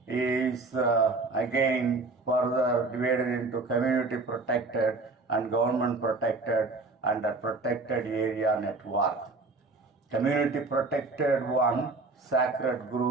is again further divided into community protected and government protected and a protected area network. Community protected one, sacred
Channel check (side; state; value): left; quieter; 3.6 dB